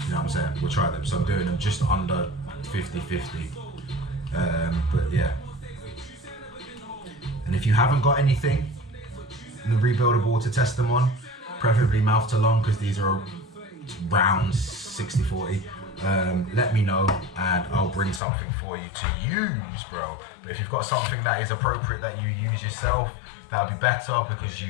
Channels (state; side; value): drops out; right; at 18.2 s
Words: know what I'm saying? We'll try them. So I'm doing them just under 50-50. But yeah. And if you haven't got anything in the rebuildable to test them on, preferably mouth to lung, because these are rounds 60-40, let me know and I'll bring something for you to use, bro. But if you've got something that is appropriate that you use yourself, that'll be better because